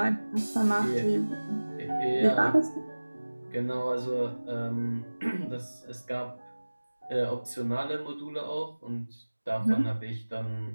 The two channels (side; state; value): both; inverted; correlation -1.00